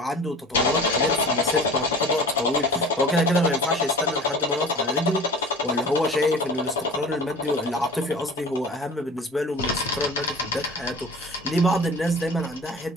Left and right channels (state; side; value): normal; both; correlation 0.40